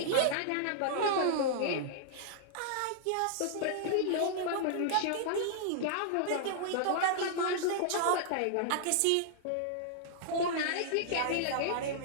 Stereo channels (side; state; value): both; different; correlation -0.01